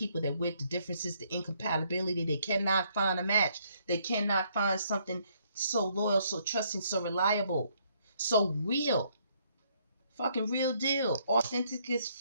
they're with, the differences, the incompatibility. They cannot find a match. They cannot find something so loyal, so trusting, so reliable, so real. Fucking real deal. Authentic as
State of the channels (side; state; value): both; inverted; correlation -0.69